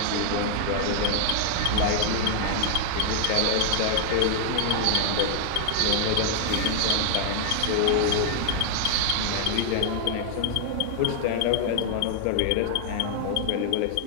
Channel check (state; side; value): different; both; correlation 0.00